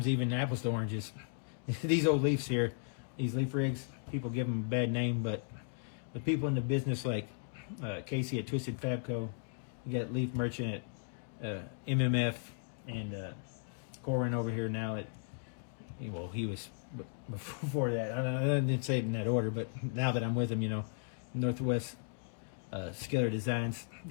even apples to oranges. These old Leafs here, these Leaf rigs, people give them a bad name, but with people in the business like Casey at Twisted Fabco, you got Leaf Merchant at MMF, and Corin over here now at, well, he was before that. I didn't say it in that order, but now that I'm with him, you know, Northwest Skiller Designs,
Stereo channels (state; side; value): silent; right; digital silence